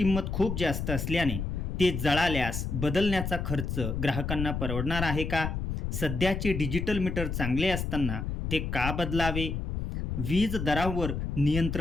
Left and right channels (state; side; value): noise; left; rumble, 3 dB below the sound